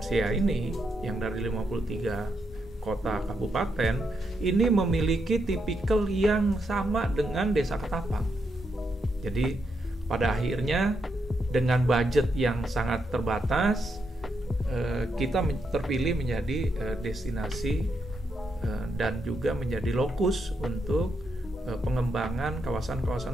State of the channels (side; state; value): both; normal; correlation 0.81